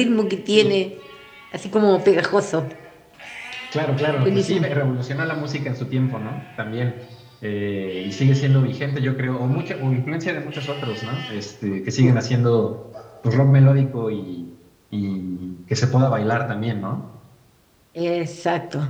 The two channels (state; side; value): identical; both; correlation 1.00